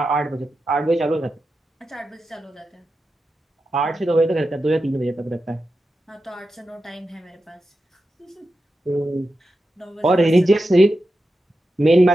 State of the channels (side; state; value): both; normal; correlation 0.90